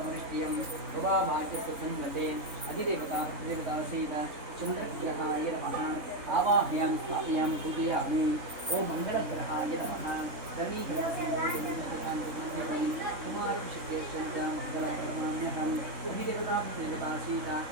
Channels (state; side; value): late; left; 3.6 ms